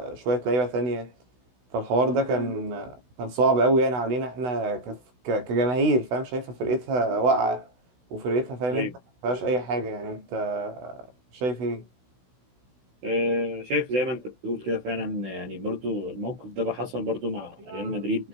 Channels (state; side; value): late; left; 16 ms